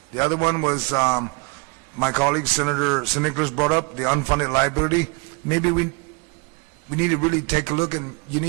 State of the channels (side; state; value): left; quieter; 30.3 dB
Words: The other one was my colleague, Senator Nicholas, brought up the unfunded liability. Maybe we need to really take a look, and you